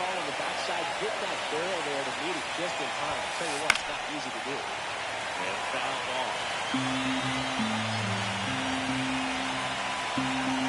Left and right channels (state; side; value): identical; both; correlation 1.00